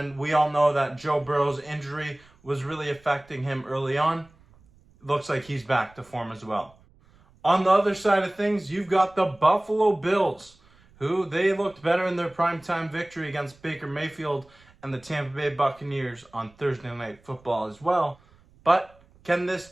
we all know that Joe Burrow's injury was really affecting him early on. Looks like he's back to form as well. On the other side of things, you've got the Buffalo Bills, who they looked better in their primetime victory against Baker Mayfield and the Tampa Bay Buccaneers on Thursday Night Football as well. But can this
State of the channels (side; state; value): right; noise; rumble, 29 dB below the sound